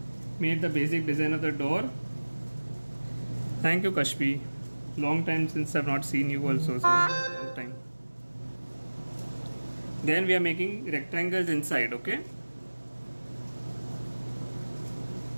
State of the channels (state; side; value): inverted; both; correlation -1.00